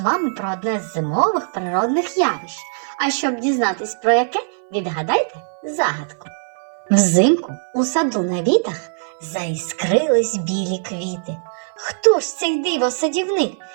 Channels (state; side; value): silent; left; 58 dB below the other